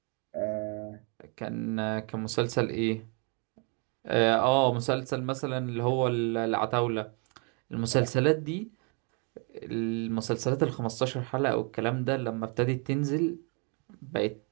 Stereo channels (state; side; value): quieter; left; 36.6 dB